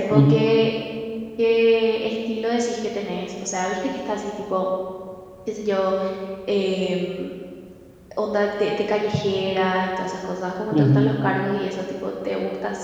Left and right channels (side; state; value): both; identical; correlation 1.00